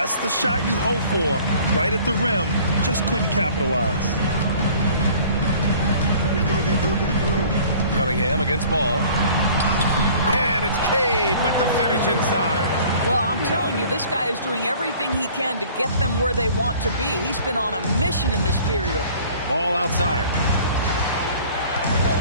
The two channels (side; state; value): both; inverted; correlation -0.50